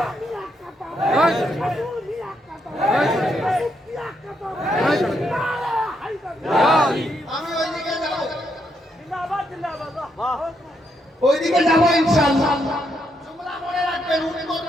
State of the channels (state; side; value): normal; both; correlation 0.78